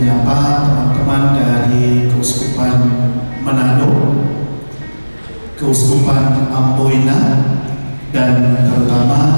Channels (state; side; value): inverted; both; correlation -1.00